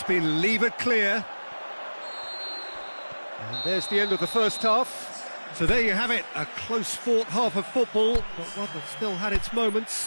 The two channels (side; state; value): both; inverted; correlation -1.00